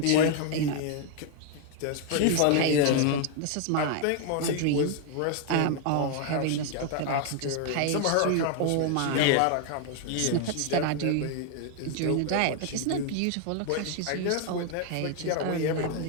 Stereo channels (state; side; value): different; both; correlation 0.00